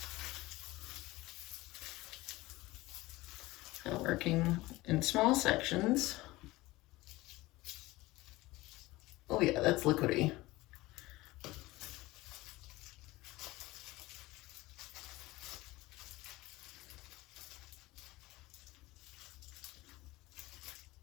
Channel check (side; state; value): right; quieter; 19.6 dB